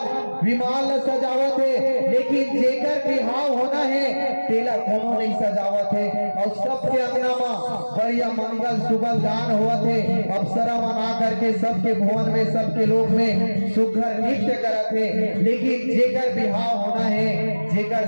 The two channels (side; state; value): both; inverted; correlation -1.00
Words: विमान ला सजावा थे, लेकिन जेकर बिहाव होना है तेला कोनो नहीं सजावा थे। और सबके अंगना में बढ़िया मंगल सुबह गान हुआ थे। अप्सरा मना करके सबके भवन में सबके लोग में सुघर नृत्य करा थे, लेकिन जेकर बिहाव होना है जेकर